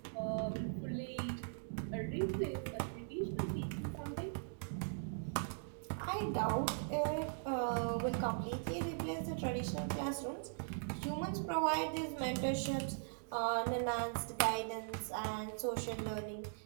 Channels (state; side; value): silent; left; digital silence